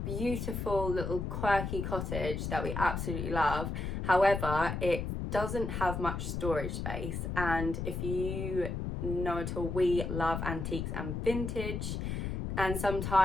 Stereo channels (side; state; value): left; noise; rumble, 3 dB below the sound